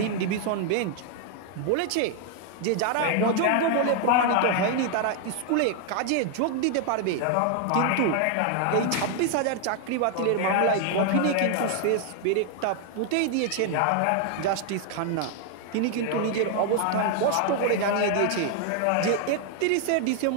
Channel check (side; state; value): both; different; correlation 0.00